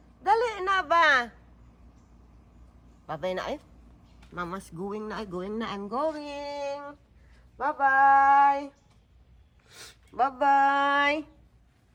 Dali na ba? Bye-bye na eh. Mama's going na. I'm going. Bye-bye. Bye-bye.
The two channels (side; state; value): both; identical; correlation 1.00